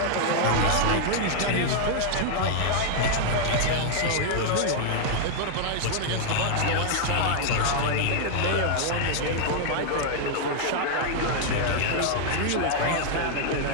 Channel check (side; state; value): both; different; correlation 0.00